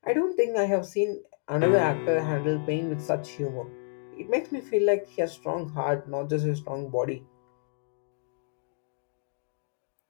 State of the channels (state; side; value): silent; right; digital silence